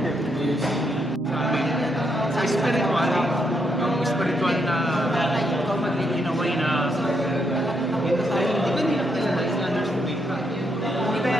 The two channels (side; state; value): both; normal; correlation 0.77